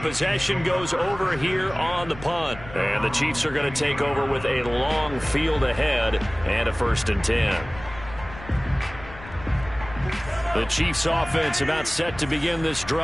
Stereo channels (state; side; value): noise; left; rumble, 15 dB below the sound